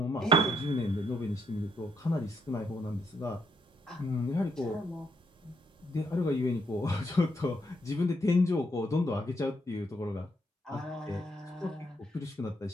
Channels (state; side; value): normal; both; correlation 0.75